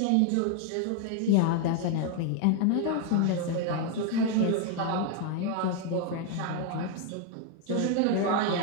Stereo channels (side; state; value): both; different; correlation 0.00